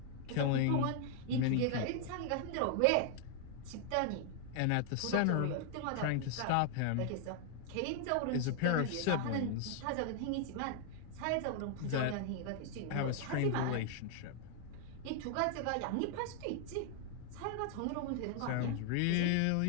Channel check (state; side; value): different; both; correlation 0.00